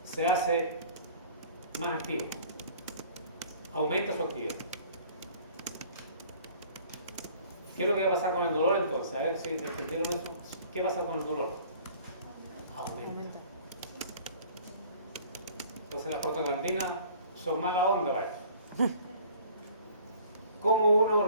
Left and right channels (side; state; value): both; inverted; correlation -0.50